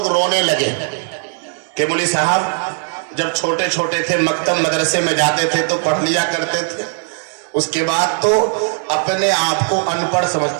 रोने लगे कि मौलवी साहब जब छोटे छोटे थे मकतब मदरसे में जाते थे तो पढ़ लिया करते थे, उसके बाद तो अपने आप को अनपढ़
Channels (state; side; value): silent; left; digital silence